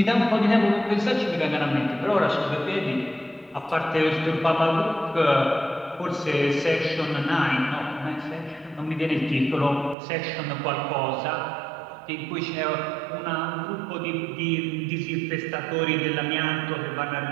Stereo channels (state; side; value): drops out; left; at 10.0 s